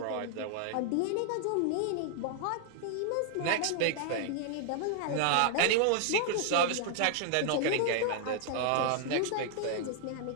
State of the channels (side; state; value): both; different; correlation 0.00